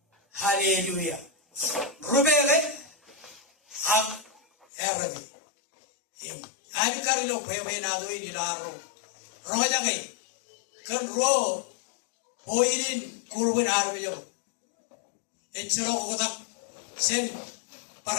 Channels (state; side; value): drops out; right; at 4.7 s